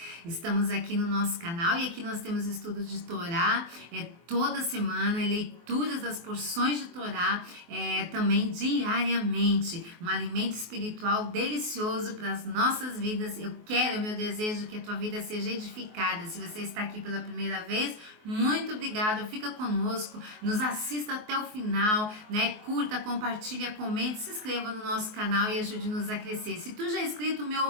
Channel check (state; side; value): late; left; 24 ms